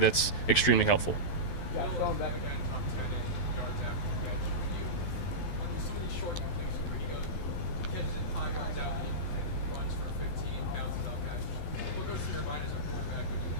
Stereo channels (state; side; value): late; right; 12 ms